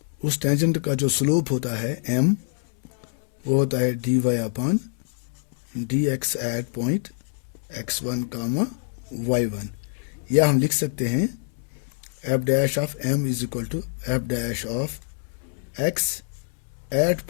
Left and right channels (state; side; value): silent; right; 62 dB below the other